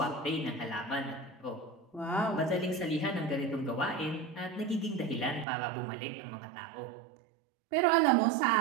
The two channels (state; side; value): drops out; left; at 5.5 s